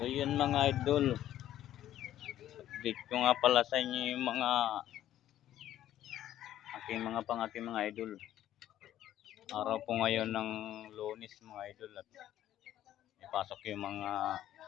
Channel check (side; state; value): right; quieter; 12.4 dB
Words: So yun mga idol, update ko nga pala sa inyo yung mga aking mga idol. Araw po ngayon ng Lunes mga idol at ipasok yung mga